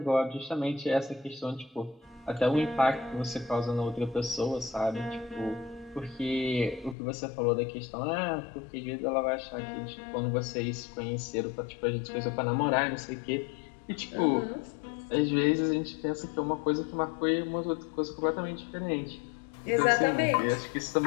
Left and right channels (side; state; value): right; drops out; at 7.0 s